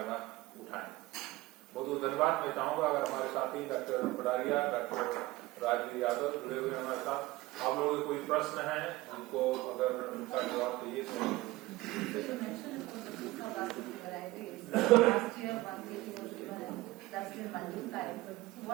उठाएं। बहुत बहुत धन्यवाद। मैं चाहूंगा अगर हमारे साथी डॉक्टर पडारिया, डॉक्टर राजवीर यादव जुड़े हुए हमारे साथ, आप लोगों के कोई प्रश्न है उनको अगर उनका जवाब चाहिए तो।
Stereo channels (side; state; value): left; quieter; 19.1 dB